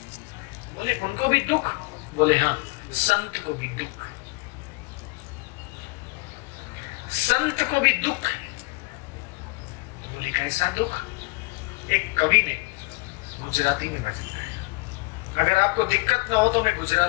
बोले उनको भी दुख? बोले हाँ, संत को भी दुख, संत को भी दुख। बोले कैसा दुख? एक कवि ने गुजराती में भजन गाया। अगर आपको दिक्कत ना हो तो मैं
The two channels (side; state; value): right; quieter; 27.8 dB